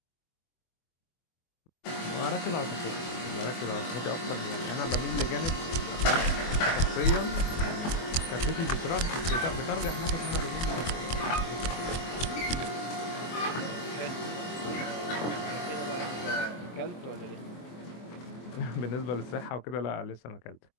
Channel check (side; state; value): right; late; 24 ms